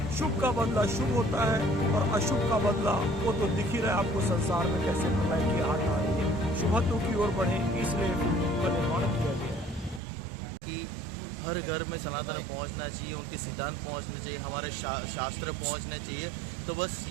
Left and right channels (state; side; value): drops out; left; at 10.0 s